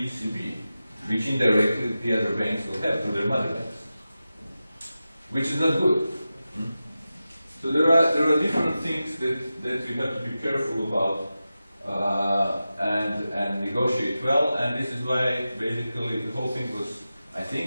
ECB, which indirectly the other banks will have to their mother banks, which is not good. So there are different things that you have to be careful about and negotiate well, and this is why basically the whole thing was, I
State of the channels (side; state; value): both; inverted; correlation -0.93